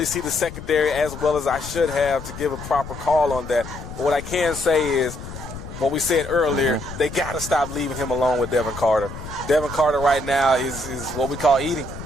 see the secondary as well as I should have to give a proper call on that. But what I can say is what we said earlier, they got to stop leaving him alone with Devin Carter. Devin Carter right now is what we call eating.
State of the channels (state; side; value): noise; left; rumble, 11 dB below the sound